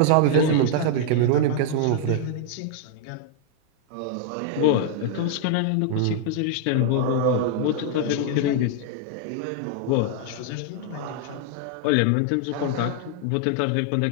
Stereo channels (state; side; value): different; both; correlation 0.00